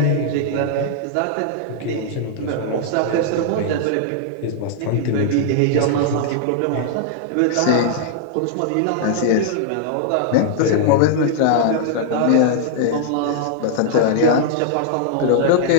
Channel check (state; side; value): different; both; correlation -0.01